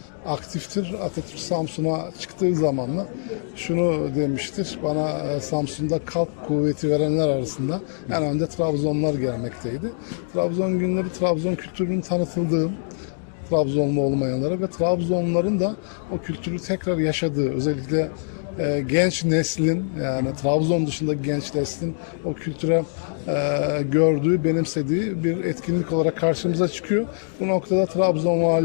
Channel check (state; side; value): silent; right; digital silence